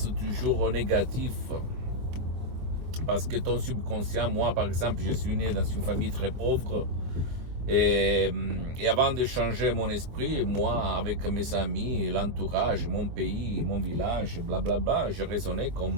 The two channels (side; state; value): left; late; 24 ms